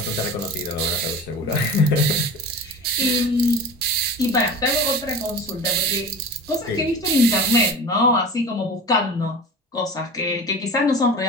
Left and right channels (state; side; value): normal; both; correlation 0.34